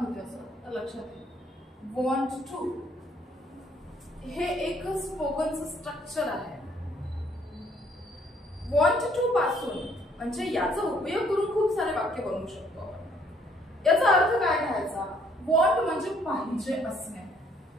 असं तर लक्षात येईल। want to हे एक स्पोकनचं स्ट्रक्चर आहे। want to पासून म्हणजे याचा उपयोग करून खूप सारे वाक्य बनवू शकतो आपण। याचा अर्थ काय घ्यायचा? want म्हणजे पाहिजे असणे।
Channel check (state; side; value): normal; both; correlation 0.65